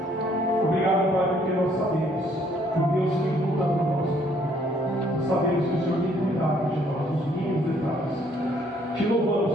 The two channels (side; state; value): both; normal; correlation 0.65